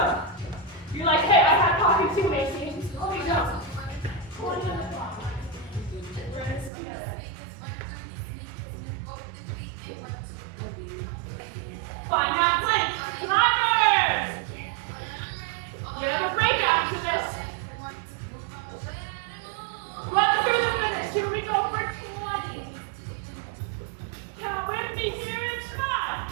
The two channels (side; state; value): left; drops out; at 6.7 s